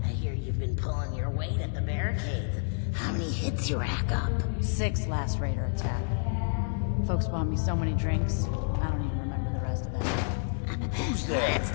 I hear you've been pulling your weight at the barricades. How many hits you rack up? 6 last raider attack. Folks bought me so many drinks, I don't even remember the rest of that. Who's there? That's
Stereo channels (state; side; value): silent; right; digital silence